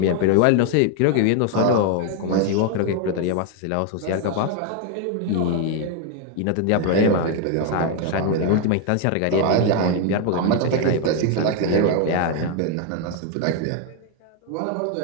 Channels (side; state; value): both; different; correlation 0.01